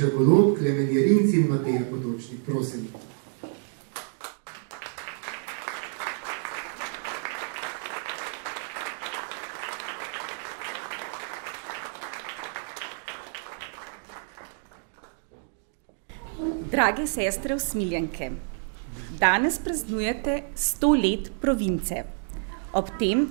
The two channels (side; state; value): left; silent; 59 dB below the other